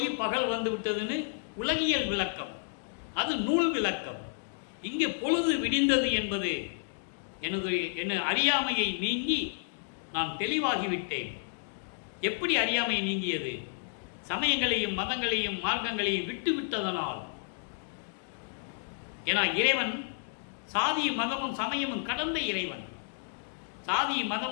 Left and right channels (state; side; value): silent; right; digital silence